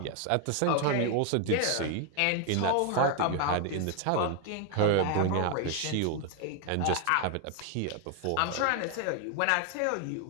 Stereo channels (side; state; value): both; different; correlation 0.01